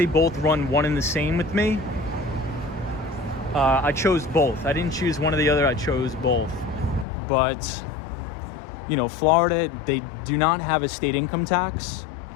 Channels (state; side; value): drops out; right; at 7.1 s